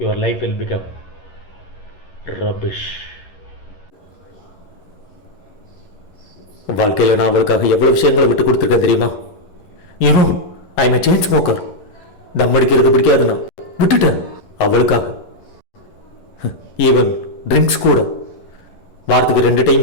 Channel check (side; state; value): right; late; 11 ms